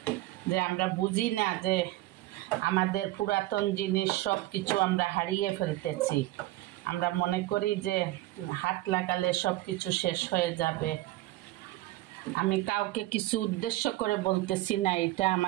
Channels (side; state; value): left; quieter; 17.2 dB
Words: যে আমরা বুঝি না যে আমাদের পুরাতন জিনিস সব কিছু আমরা হারিয়ে ফেলতেছি। আমরা মনে করি যে হাত লাগালে সব কিছু শেষ হয়ে যাবে। আমি কাউকে কিছু উদ্দেশ্য করে বলতেছি না, এটা